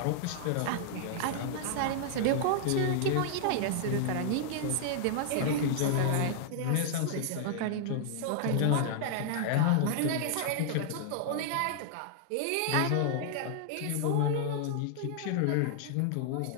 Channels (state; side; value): different; both; correlation -0.01